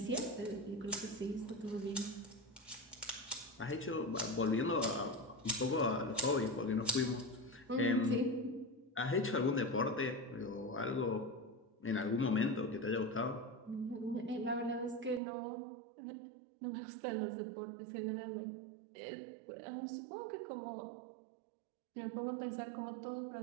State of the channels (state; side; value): drops out; left; at 15.2 s